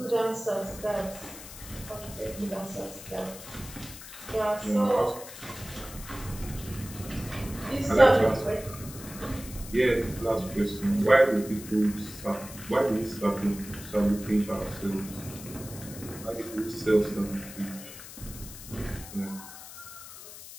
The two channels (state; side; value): noise; left; hiss, 14 dB below the sound